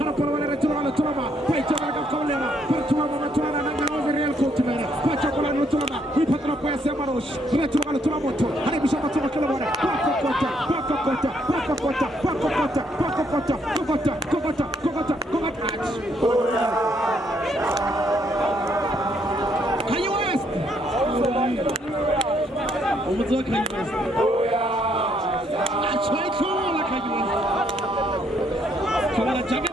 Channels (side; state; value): both; normal; correlation 0.71